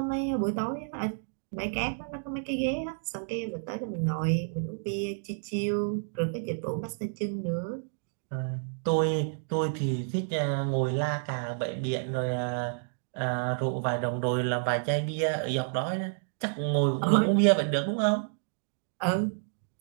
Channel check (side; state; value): left; silent; digital silence